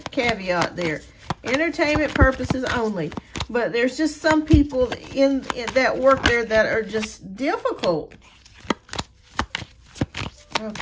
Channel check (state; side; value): identical; both; correlation 1.00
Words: caveat there. Entertainment purposes only. But there's just some people in that work there that are just difficult.